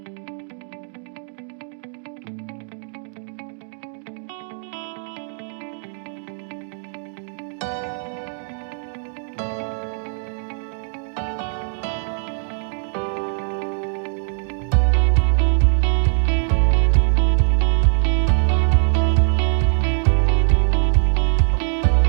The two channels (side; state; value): left; silent; 64 dB below the other